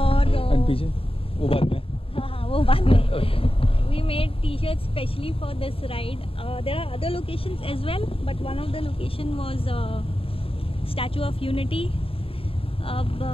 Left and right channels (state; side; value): late; right; 0.27 ms